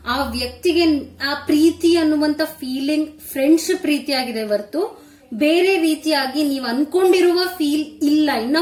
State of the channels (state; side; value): identical; both; correlation 1.00